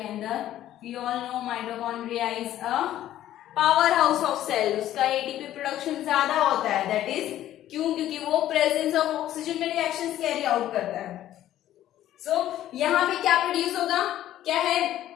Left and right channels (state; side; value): quieter; right; 12.8 dB